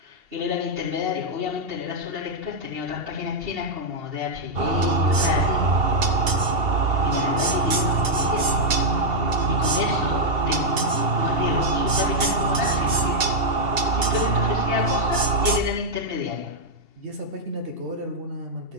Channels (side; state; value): left; late; 2.7 ms